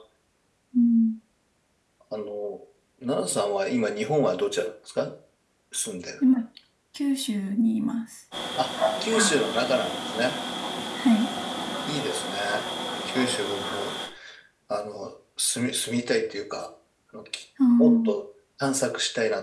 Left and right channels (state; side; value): identical; both; correlation 1.00